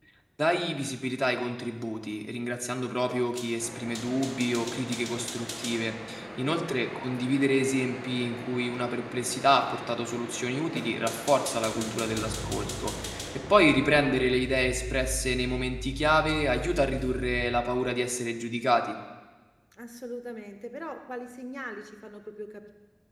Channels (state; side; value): identical; both; correlation 1.00